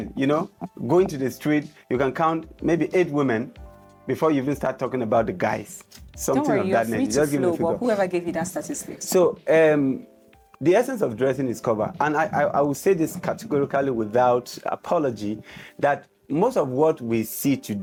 going to the street, you can count maybe 8 women before you even start talking about the guys. Something Don't worry, of you're that free nature. to flow, but whoever gave you that statistic. So, the essence of dressing is cover. And I will say this categorically without apology, that most of what we see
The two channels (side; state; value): both; identical; correlation 1.00